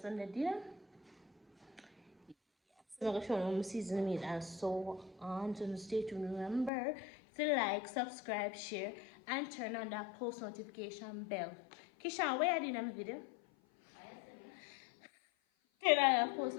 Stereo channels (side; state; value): right; drops out; at 6.7 s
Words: dinner. So I'm gonna show you season meat and so on. So stay tuned. Remember to like, subscribe, share, and turn on that post notification bell. Kishan, where are you in the video? Turn on that post